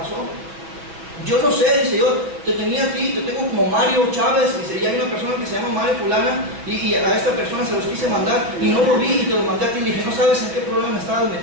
Yo no sé, dice, yo te tenía a ti, te tengo como Mario Chávez, dice, y hay una persona que se llama Mario Fulana, y a esta persona se los quise mandar, y no lo vi, y te lo mandé a ti, y dije, no sabes en qué problema me estabas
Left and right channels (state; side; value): late; left; 6.3 ms